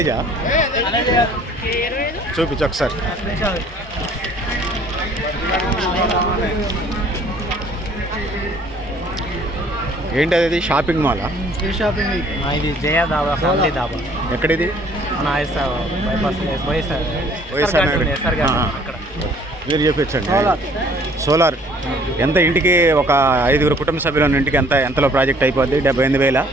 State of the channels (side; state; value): both; normal; correlation 0.57